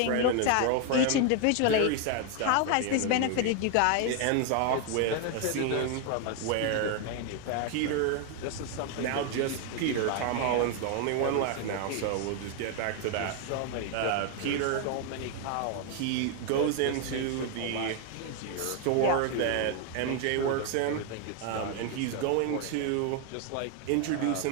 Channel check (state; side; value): different; both; correlation 0.01